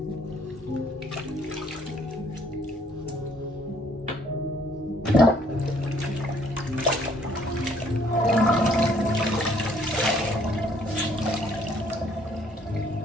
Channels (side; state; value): both; normal; correlation 0.63